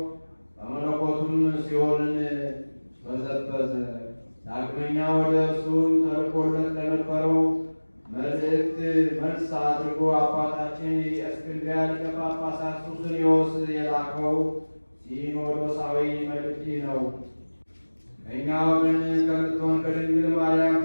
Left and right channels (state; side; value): inverted; both; correlation -1.00